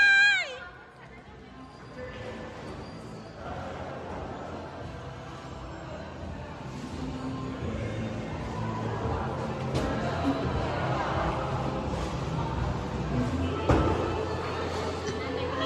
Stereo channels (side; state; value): both; identical; correlation 1.00